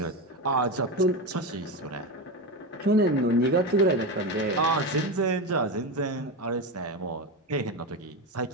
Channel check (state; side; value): normal; both; correlation 0.17